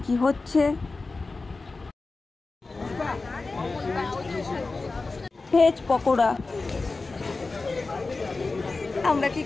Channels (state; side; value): quieter; right; 3.7 dB